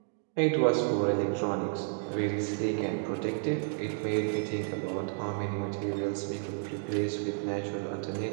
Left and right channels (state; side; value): silent; left; digital silence